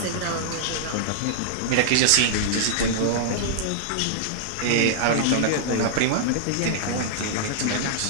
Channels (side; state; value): both; different; correlation -0.01